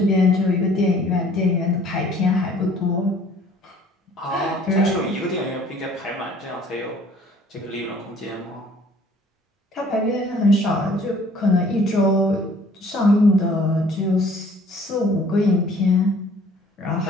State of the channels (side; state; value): both; normal; correlation 0.55